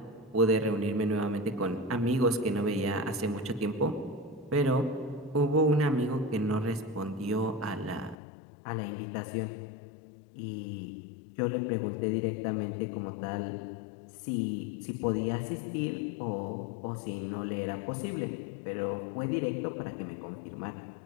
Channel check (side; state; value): right; drops out; at 8.2 s